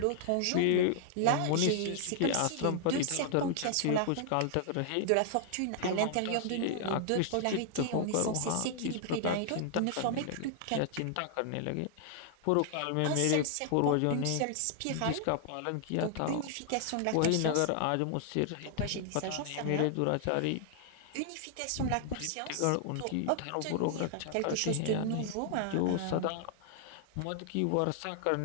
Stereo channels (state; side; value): different; both; correlation -0.01